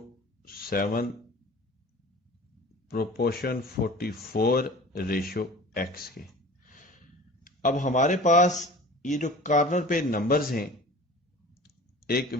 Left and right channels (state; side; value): normal; both; correlation 0.41